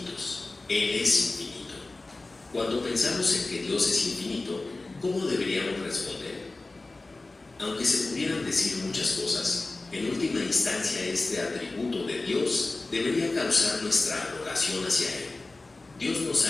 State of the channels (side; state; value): right; quieter; 3.2 dB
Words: Él es infinito. Cuando pensamos en que Dios es infinito, ¿cómo deberíamos responder? Aunque se pudieran decir muchas cosas, en última instancia este atributo de Dios debería causar nuestra adoración hacia Él. Dios nos